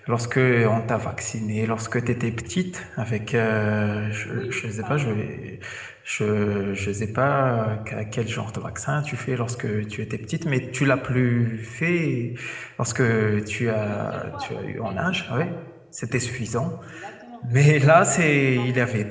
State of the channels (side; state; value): both; identical; correlation 1.00